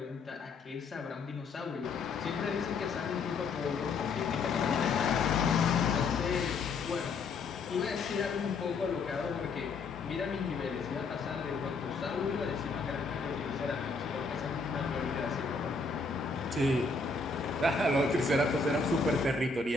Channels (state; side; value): quieter; right; 4.2 dB